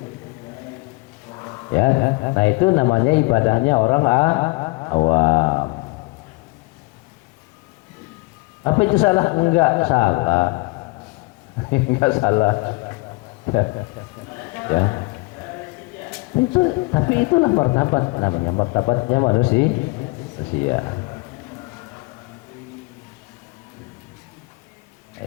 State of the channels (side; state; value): right; quieter; 26.1 dB